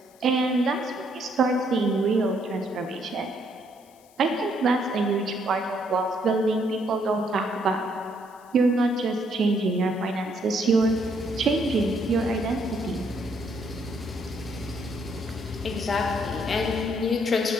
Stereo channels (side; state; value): left; noise; hiss, 29 dB below the sound